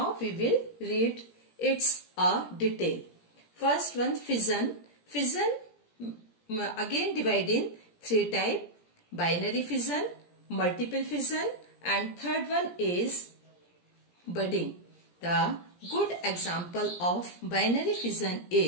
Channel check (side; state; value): right; late; 17 ms